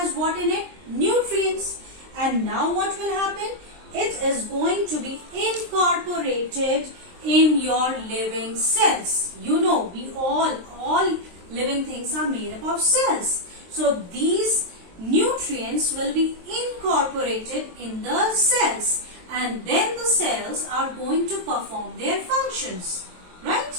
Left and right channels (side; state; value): left; late; 23 ms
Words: what in it? Nutrients. And now what will happen? It is going to be incorporated in your living cells. You know, we all living things are made up of cells. So these nutrients will be incorporated in the cells, and then the cells are going to perform their functions,